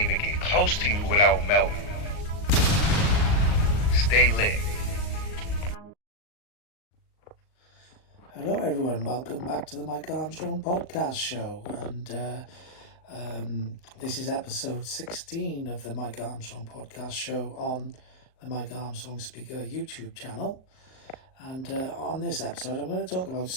get close to you without melting. Stay lit. Hello everyone, welcome back to the Mike Armstrong podcast show, and this is episode 16 of the Mike Armstrong podcast show on the Mike Armstrong Speaker YouTube channel. And on this episode I'm going to talk about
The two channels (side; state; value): right; late; 38 ms